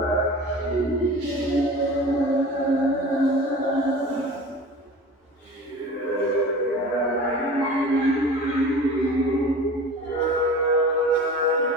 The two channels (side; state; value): both; normal; correlation 0.38